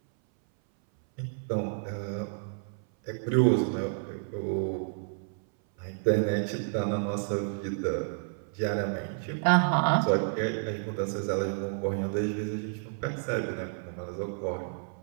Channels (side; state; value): left; silent; 58 dB below the other